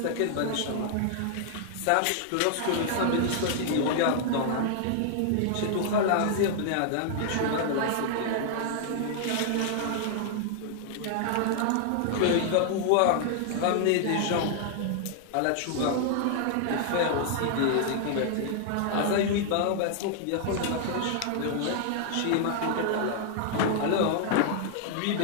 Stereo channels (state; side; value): different; both; correlation -0.01